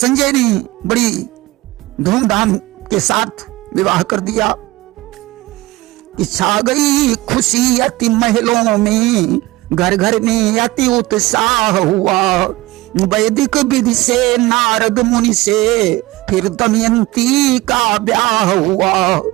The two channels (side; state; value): left; quieter; 19.2 dB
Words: ने बड़ी धूमधाम के साथ विवाह कर दिया। छा गई खुशी अति महलों में, घर घर में अति उत्साह हुआ। वैदिक विधि से नारद मुनि से फिर दमयंती का ब्याह हुआ।